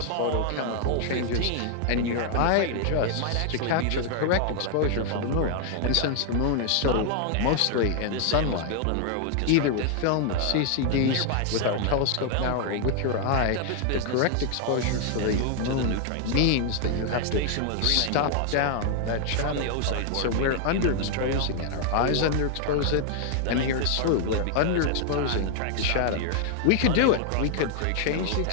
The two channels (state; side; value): different; both; correlation 0.00